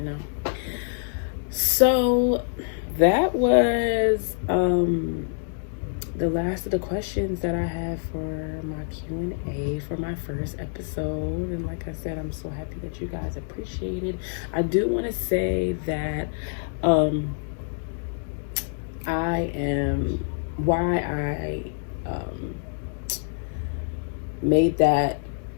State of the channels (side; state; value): right; silent; digital silence